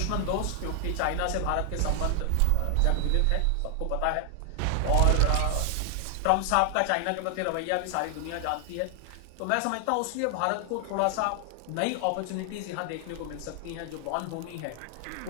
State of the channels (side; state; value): both; different; correlation 0.00